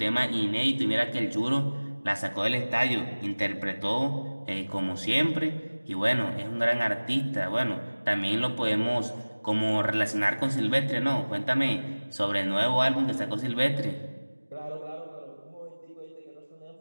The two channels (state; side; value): inverted; both; correlation -1.00